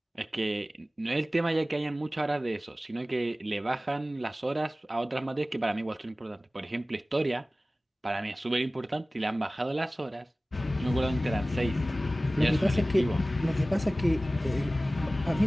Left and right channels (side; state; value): both; normal; correlation 0.97